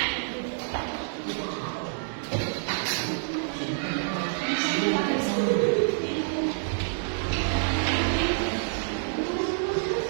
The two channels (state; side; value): silent; left; digital silence